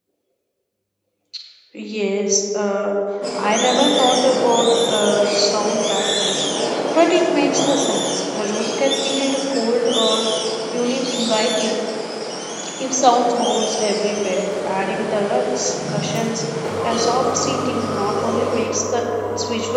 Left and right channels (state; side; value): identical; both; correlation 1.00